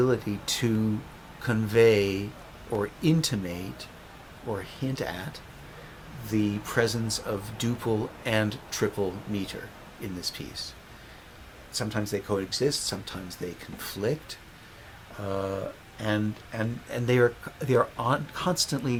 to convey or intimate or hint at the presence of duple and triple meter in this piece. Sometimes they coexist, sometimes they conflict, and they are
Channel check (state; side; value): identical; both; correlation 1.00